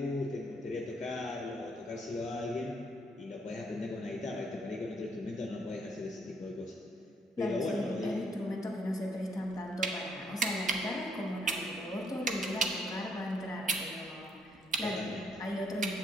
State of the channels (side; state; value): both; normal; correlation 0.70